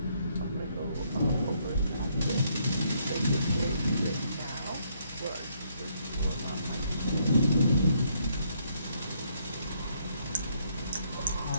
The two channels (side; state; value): both; inverted; correlation -0.71